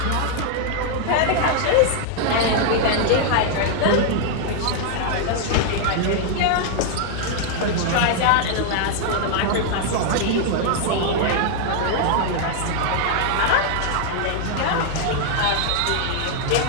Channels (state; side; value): different; both; correlation 0.00